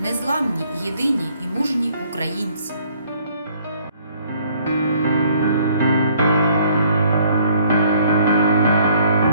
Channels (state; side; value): inverted; both; correlation -0.61